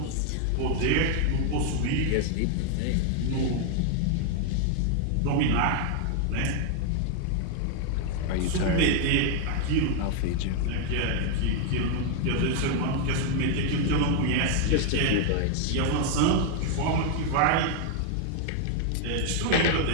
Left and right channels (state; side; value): different; both; correlation 0.00